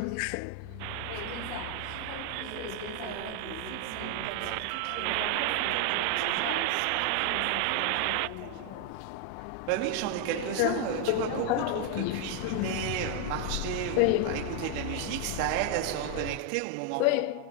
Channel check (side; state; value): both; different; correlation 0.01